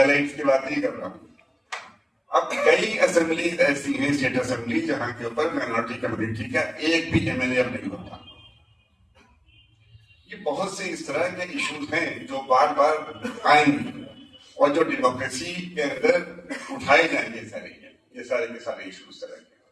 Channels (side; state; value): both; identical; correlation 1.00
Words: की बात नहीं कर रहा हूँ। अब कई असेंबलीज ऐसी हैं, स्टेट असेंबली, जहां के ऊपर माइनॉरिटी कम्युनिटी का एक भी एमएलए नहीं होता। ये बहुत से इस तरह के इश्यूज हैं जो बार बार आएंगे और जो डेमोक्रेसी के अंदर उठाए जाएंगे, ये सारे के सारे इश्यूज तरह के।